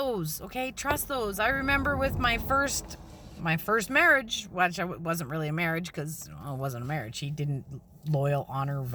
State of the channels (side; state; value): both; identical; correlation 1.00